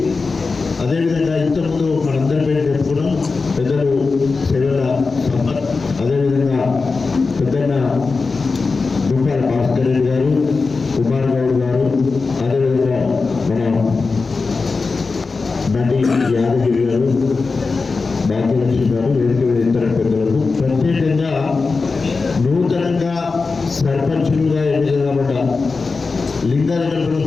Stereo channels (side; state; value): right; quieter; 4.2 dB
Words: అదేవిధంగా ఇంతకుముందు మనందరి పేరు చెప్పుకున్నాం పెద్దలు సెలవుల సంపత్, అదేవిధంగా పెద్దన్న దుంపాల భాస్కర్ రెడ్డి గారు, కుమార్ గౌడ్ గారు, అదేవిధంగా మన నటి యాదగిరి గారు, భాగ్యలక్ష్మి గారు, వేదిక ఇతర పెద్దలకు, ప్రత్యేకంగా నూతనంగా సర్పంచులుగా ఎన్నిక కాబట్ట లింగాలగంపలో